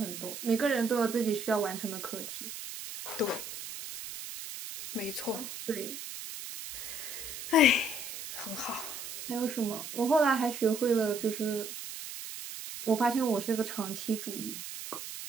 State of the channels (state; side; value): noise; right; hiss, 9 dB below the sound